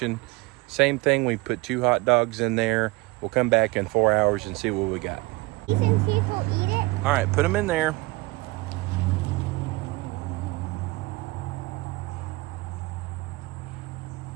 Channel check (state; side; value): quieter; left; 23.2 dB